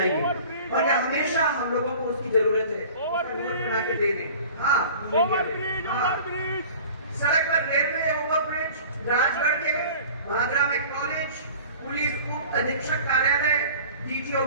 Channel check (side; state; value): both; inverted; correlation -0.44